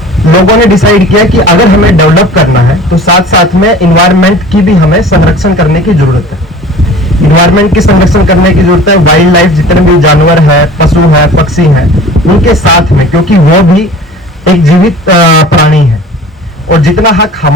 लोगों ने डिसाइड किया कि अगर हमें डेवलप करना है तो साथ साथ में इन्वायरमेंट की भी हमें संरक्षण करने की जरूरत है। इन्वायरमेंट की संरक्षण करने की जरूरत है, वाइल्ड लाइफ जितने भी जानवर है, पशु है, पक्षी हैं, उनके साथ में, क्योंकि वो भी एक जीवित प्राणी है और जितना हक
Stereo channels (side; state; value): both; normal; correlation 0.43